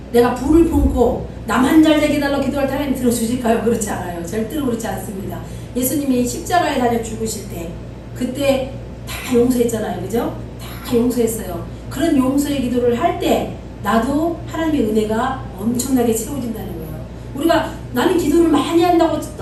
내가 불을 품고 나만 잘 되게 달라고 기도할 때 하나님 들어주실까요? 그렇지 않아요. 절대로 그렇지 않습니다. 예수님이 십자가에 달려 죽으실 때 그때 다 용서했잖아요. 그죠? 다 용서했어요. 그런 용서의 기도를 할 때 나도 하나님의 은혜가 엄청나게 채워진다는 거예요. 우리가 나는 기도를 많이 한다고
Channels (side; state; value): both; identical; correlation 1.00